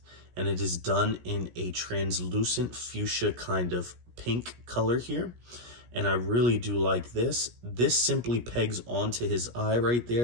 and it is done in a translucent fuchsia kind of pink color here. And I really do like this. This simply pegs onto his eye right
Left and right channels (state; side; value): late; left; 17 ms